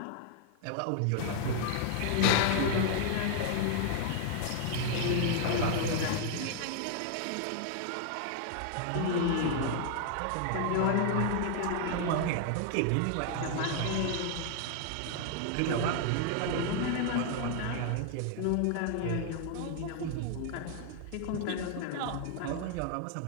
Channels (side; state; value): both; different; correlation 0.00